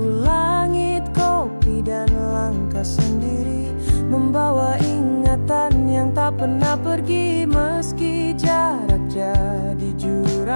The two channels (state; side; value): inverted; both; correlation -1.00